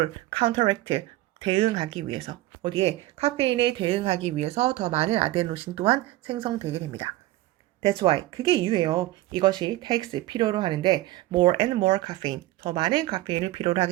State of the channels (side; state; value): left; quieter; 16.8 dB